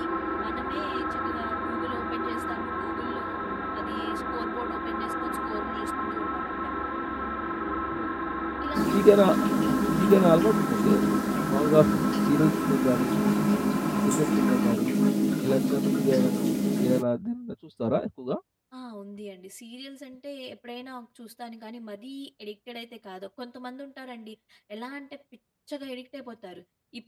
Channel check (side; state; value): both; identical; correlation 1.00